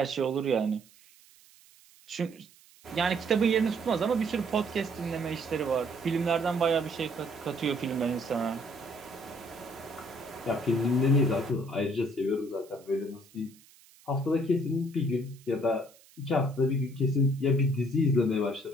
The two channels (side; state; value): right; noise; hiss, 26 dB below the sound